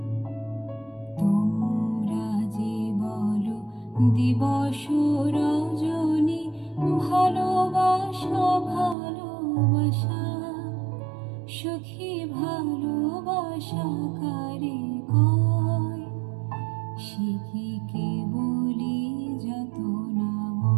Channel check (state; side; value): drops out; left; at 9.0 s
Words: তোমরা যে বলো দিবস রজনী, ভালোবাসা ভালোবাসা, সুখী ভালোবাসা কারে কয়? সে কি কেবলি যাতনাময়?